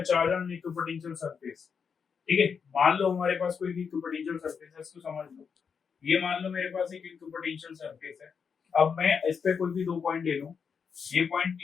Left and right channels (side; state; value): right; quieter; 6.3 dB